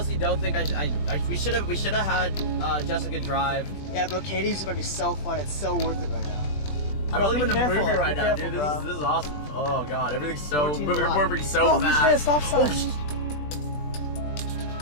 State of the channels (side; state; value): right; late; 20 ms